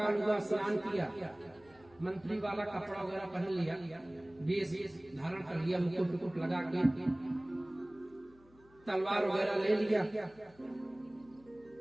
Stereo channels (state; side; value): noise; left; hum, 28 dB below the sound